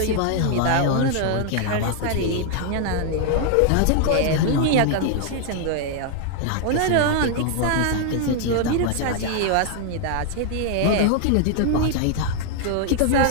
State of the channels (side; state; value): both; different; correlation 0.00